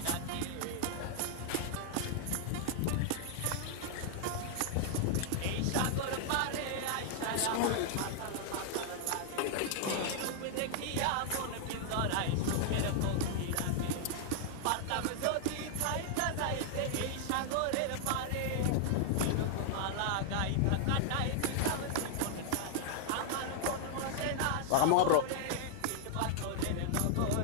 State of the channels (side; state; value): both; different; correlation 0.00